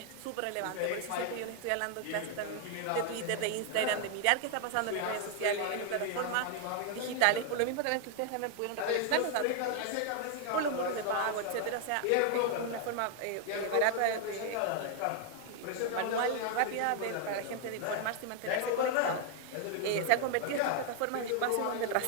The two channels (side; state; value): both; different; correlation 0.00